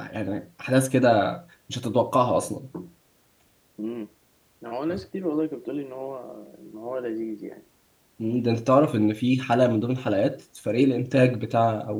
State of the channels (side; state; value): both; identical; correlation 1.00